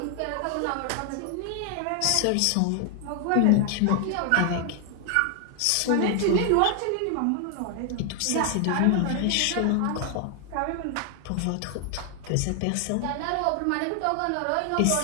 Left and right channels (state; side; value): different; both; correlation 0.00